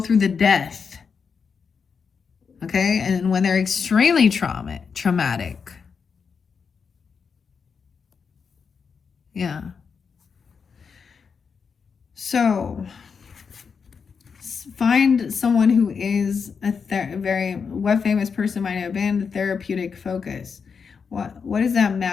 the death, okay? And when they're extremely traumatic, yeah. So find someone who is a very, what famous person might have been the therapeutic focus. What does that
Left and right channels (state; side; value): quieter; right; 5.9 dB